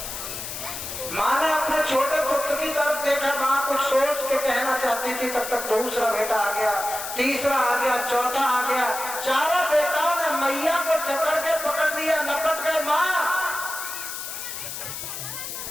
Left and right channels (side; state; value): left; noise; hiss, 7 dB below the sound